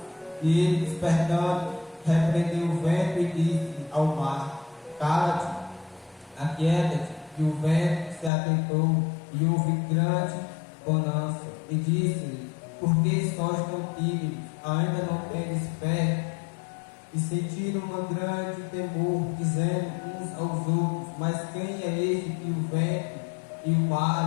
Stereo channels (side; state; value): right; drops out; at 8.3 s